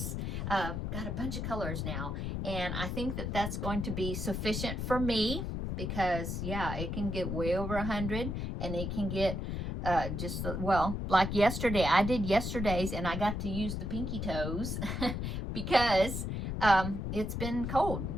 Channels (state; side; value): noise; left; rumble, 3 dB below the sound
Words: Got a bunch of colors now, and I think that that's going to be sufficient for me because, yeah, it can get way over 100, and it can get just, well, like yesterday. I did yesterday's, and I got to use the Pinky Toes because it's been cold.